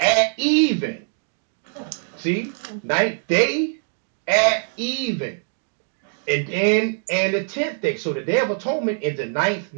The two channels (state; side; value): silent; left; digital silence